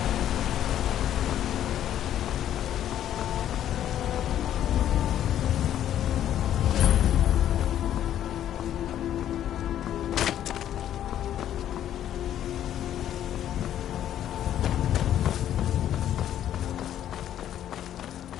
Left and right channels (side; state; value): right; quieter; 11.1 dB